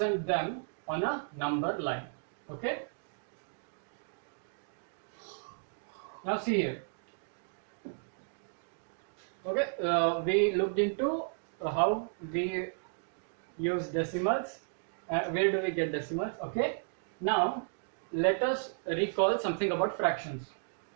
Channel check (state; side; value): silent; left; digital silence